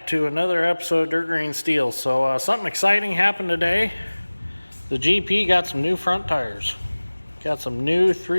to another episode of Dirt Green Steel. So, something exciting happened today. The GP got some new front tires. Got some new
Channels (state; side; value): inverted; both; correlation -1.00